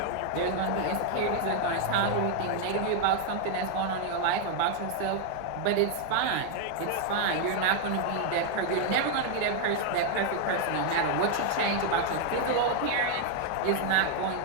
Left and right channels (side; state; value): both; different; correlation 0.00